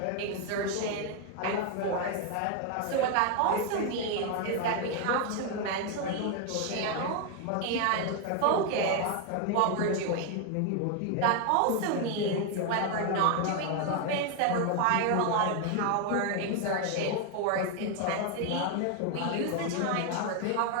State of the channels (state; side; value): different; both; correlation 0.01